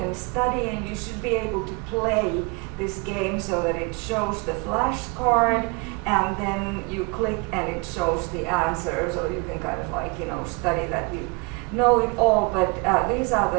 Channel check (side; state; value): left; quieter; 30.1 dB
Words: study, and you should be able to play this game so that it shows the flashcard, and then you click and it shows the answers, or you can kind of like study that you know it all. But these are